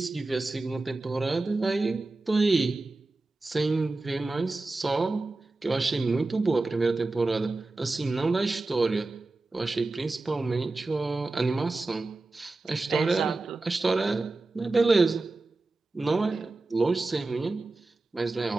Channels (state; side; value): quieter; left; 3.2 dB